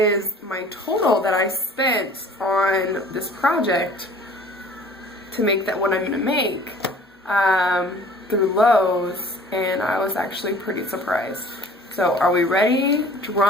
my total that I spent on this project to make that what I'm going to make through Lowe's. And I was actually pretty surprised. So are we ready?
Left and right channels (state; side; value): normal; both; correlation 0.49